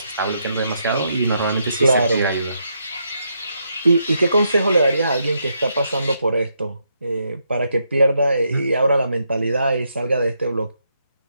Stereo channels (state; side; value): inverted; both; correlation -0.79